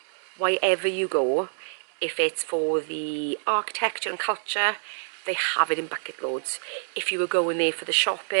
wherever you go, if it's for the architecture and culture, they have it in bucket loads. If you were going there for the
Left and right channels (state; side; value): silent; left; digital silence